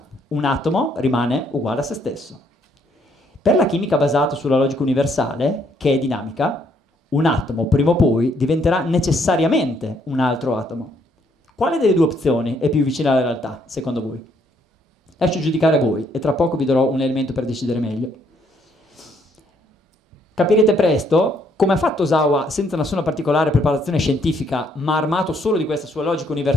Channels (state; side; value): normal; both; correlation 0.69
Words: un atomo rimane uguale a se stesso. Per la chimica basata sulla logica universale, che è dinamica, un atomo prima o poi diventerà necessariamente un altro atomo. Quale delle due opzioni è più vicina alla realtà, secondo voi? Lascio giudicare voi e tra poco vi darò un elemento per decidere meglio. Capirete presto come ha fatto Osawa, senza nessuna particolare preparazione scientifica, ma armato solo di questa sua logica